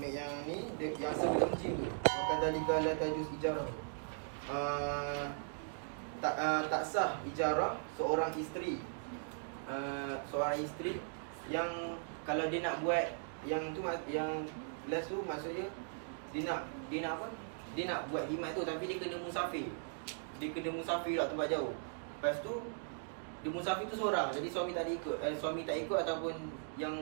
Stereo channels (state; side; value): silent; left; digital silence